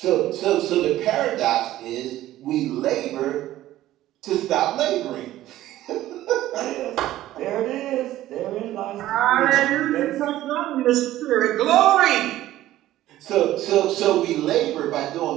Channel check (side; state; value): left; quieter; 14.5 dB